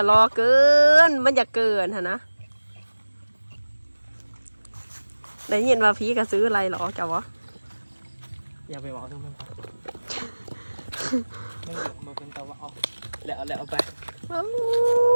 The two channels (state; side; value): inverted; both; correlation -1.00